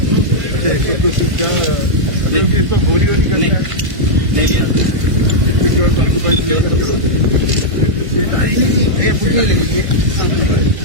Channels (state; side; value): late; left; 1.5 ms